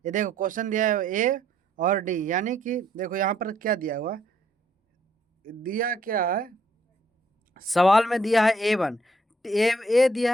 ये देखो क्वेश्चन दिया है ए और डी, यानी कि देखो यहाँ पर क्या दिया हुआ, दिया क्या है, सवाल में दिया है A1, ए दिया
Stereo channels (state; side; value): normal; both; correlation 0.67